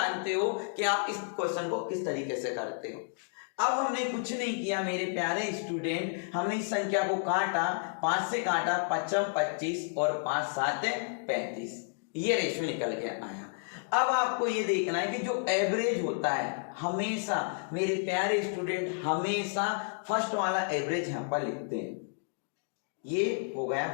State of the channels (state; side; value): silent; right; digital silence